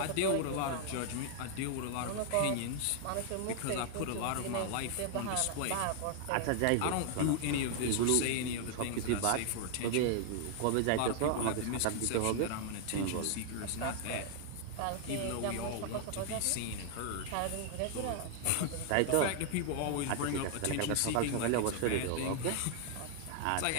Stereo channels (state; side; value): different; both; correlation 0.00